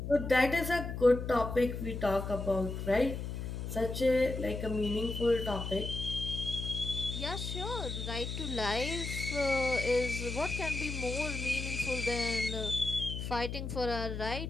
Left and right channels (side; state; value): left; noise; hum, 5 dB below the sound